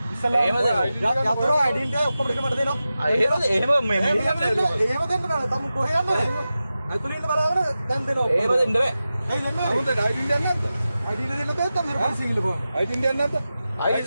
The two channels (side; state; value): both; inverted; correlation -0.93